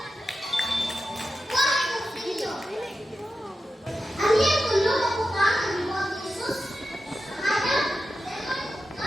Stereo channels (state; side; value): normal; both; correlation 0.91